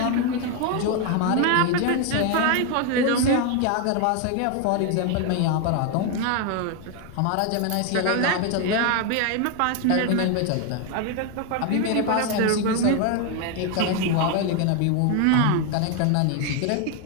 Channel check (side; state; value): both; different; correlation 0.01